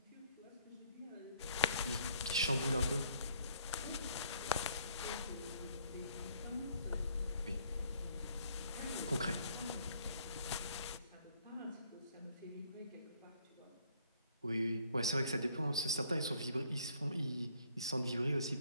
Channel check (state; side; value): inverted; both; correlation -0.63